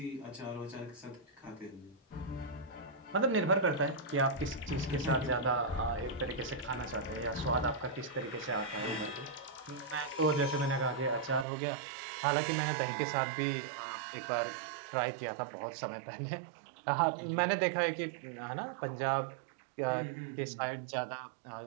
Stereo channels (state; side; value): drops out; left; at 11.5 s